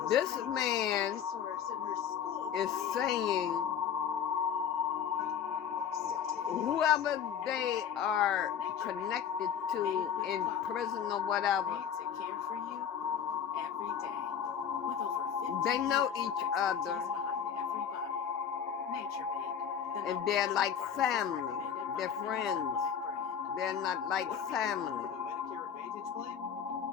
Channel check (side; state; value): right; quieter; 8.1 dB